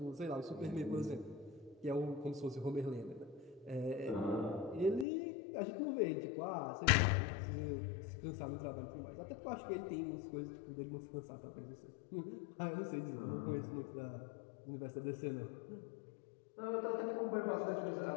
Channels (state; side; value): drops out; right; at 5.1 s